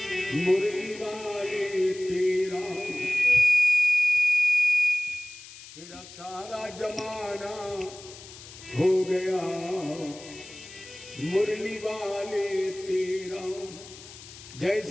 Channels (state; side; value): noise; left; hiss, 17 dB below the sound